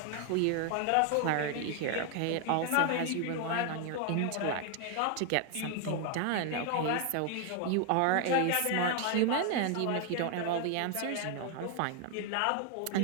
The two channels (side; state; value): both; different; correlation 0.00